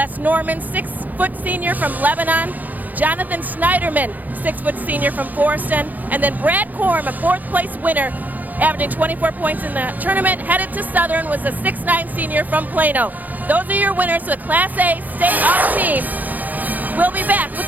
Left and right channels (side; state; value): left; late; 0.082 ms